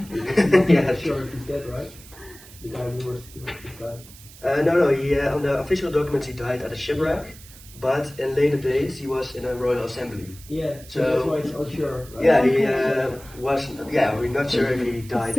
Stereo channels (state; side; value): noise; right; hiss, 20 dB below the sound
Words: Yeah, sure he's dead, right? The guy who was his life. No. He on the official documents he died at a shipwreck, but in later days he was in a royal assembly. Yeah. So that's why it's unsure. Right? Yeah, he was. Yeah, we're not sure if he died